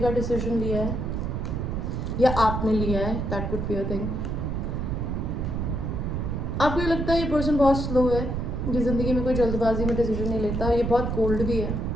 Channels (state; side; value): noise; right; rumble, 2 dB below the sound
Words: का डिसीजन लिया है या आपने लिया है, that could be a thing. आपको ये लगता है ये पर्सन बहुत स्लो है, ये ज़िंदगी में कोई जल्दबाजी में डिसीजन नहीं लेता, ये बहुत कोल्ड भी है।